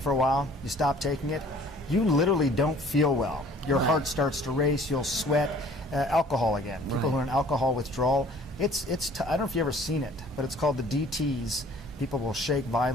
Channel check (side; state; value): both; normal; correlation 0.53